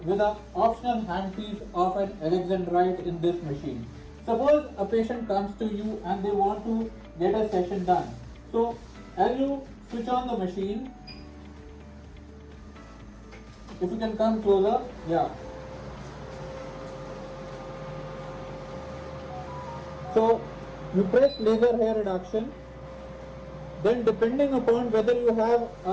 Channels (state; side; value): identical; both; correlation 1.00